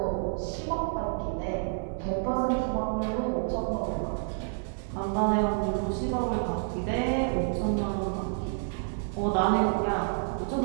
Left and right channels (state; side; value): silent; left; digital silence